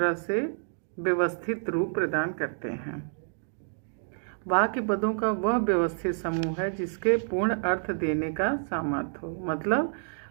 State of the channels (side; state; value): left; silent; digital silence